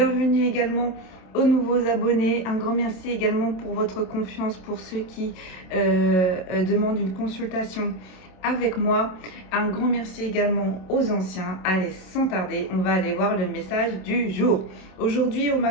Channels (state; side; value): late; right; 27 ms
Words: également aux nouveaux abonnés, un grand merci également pour votre confiance, pour ceux qui demandent une consultation avec moi. Un grand merci également aux anciens. Allez, sans tarder, on va aller voir le message du jour. Aujourd'hui, on